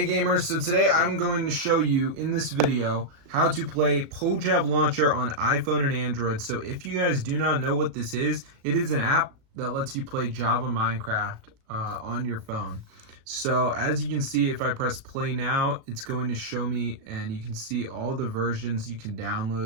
gamers, so today I'm going to show you in this video how to play PoJavLauncher on iPhone and Android. So if you guys do not know what this is, it is an app that lets you play Java Minecraft on your phone. So as you can see, if I press play now, it's going to show me, and you can see all the versions you can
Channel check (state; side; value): late; left; 37 ms